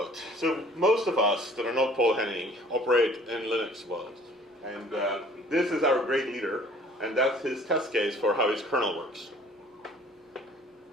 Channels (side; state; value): both; normal; correlation 0.53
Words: So most of us that are not Paul Henning operate in Linux world, and this is our great leader, and that's his test case for how his kernel works.